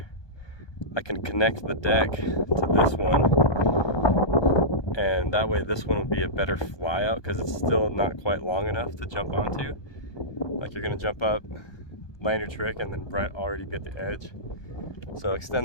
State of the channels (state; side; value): late; right; 1.2 ms